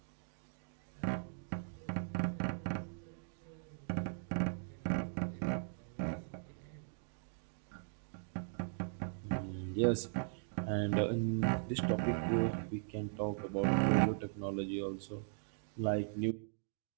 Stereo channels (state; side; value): silent; left; digital silence